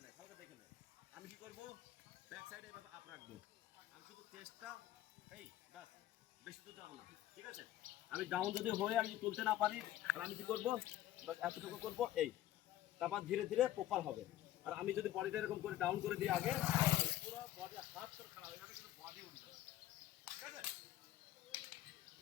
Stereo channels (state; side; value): quieter; right; 13.6 dB